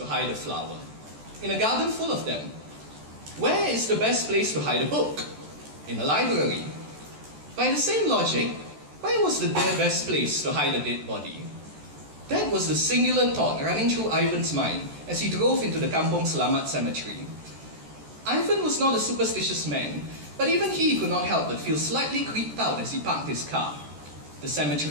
hide a flower. In a garden full of them. Where is the best place to hide a book? In a library. By the same logic, where was the best place to hide a dead body? That was the singular thought running through Ivan's mind as he drove into the Kampong Selamat cemetery. Ivan was not a superstitious man, but even he could not help but feel slightly creeped out as he parked his car. The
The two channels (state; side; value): late; left; 14 ms